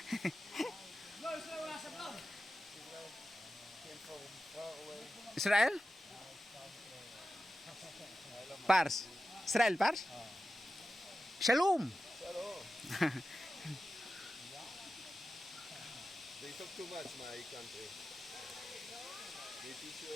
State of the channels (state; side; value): normal; both; correlation 0.93